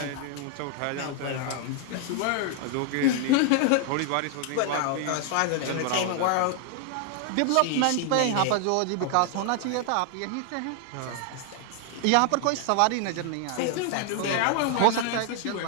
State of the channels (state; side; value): different; both; correlation 0.00